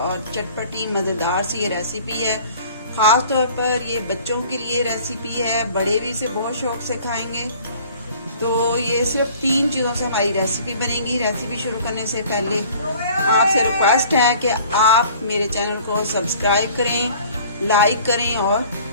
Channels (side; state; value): both; inverted; correlation -0.50